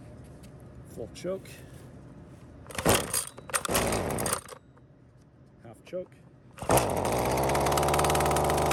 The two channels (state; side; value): identical; both; correlation 1.00